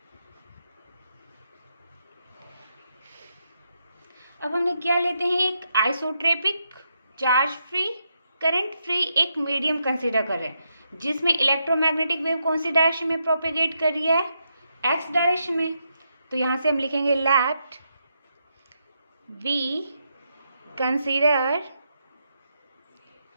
अब हमने क्या लेते हैं? एक isotropic charge free current free एक मीडियम कंसीडर कर रहे हैं जिसमें इलेक्ट्रोमैग्नेटिक वेव कौन सी डायरेक्शन में प्रोपेगेट कर रही है? एक्स डायरेक्शन में। तो यहाँ से हम लिखेंगे let we consider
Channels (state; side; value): inverted; both; correlation -0.82